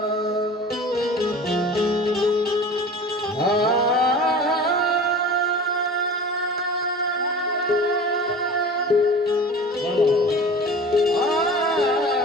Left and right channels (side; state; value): both; normal; correlation 0.38